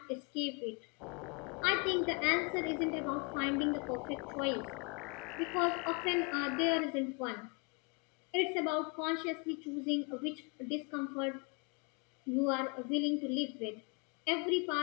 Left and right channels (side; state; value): right; quieter; 32.7 dB